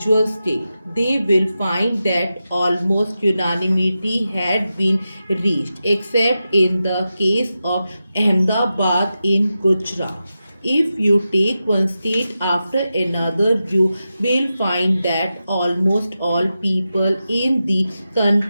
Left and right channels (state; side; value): inverted; both; correlation -0.91